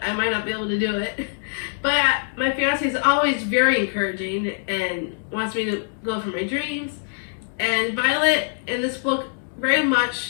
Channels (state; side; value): silent; right; digital silence